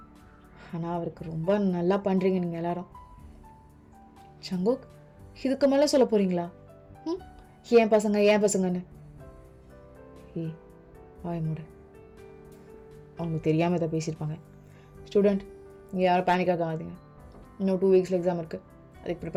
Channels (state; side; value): identical; both; correlation 1.00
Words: ஆனால் அவருக்கு ரொம்ப நல்லா பண்ணுறீங்க நீங்கள் எல்லாரும். சங்குக், இதுக்கு மேலே சொல்ல போகிறீங்களா? ஏன் பசங்கன்னு? வாய் மூடு. அவங்களுக்கு தெரியாமல் இதை பேசியிருப்பாங்க. ஸ்டூடெண்ட், நீங்கள் யாரும் பேனிக் ஆகாதீங்க. இன்னும் 2 வீக்ஸில் எக்ஸாம் இருக்குது, அதுக்கு